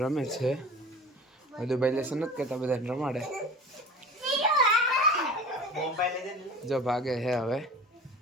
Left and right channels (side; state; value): both; normal; correlation 0.39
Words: છે બધું ભાઈ લેસન નથી કરતા બધાને રમાડે જો ભાગે હે હવે